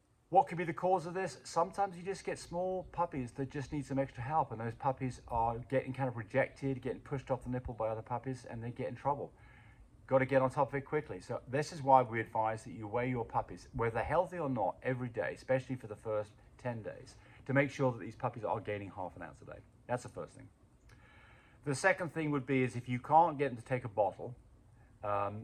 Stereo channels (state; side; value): identical; both; correlation 1.00